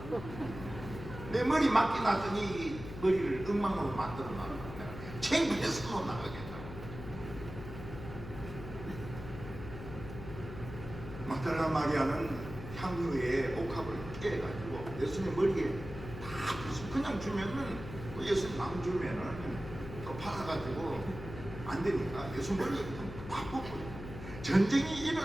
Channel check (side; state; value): left; noise; hum, 10 dB below the sound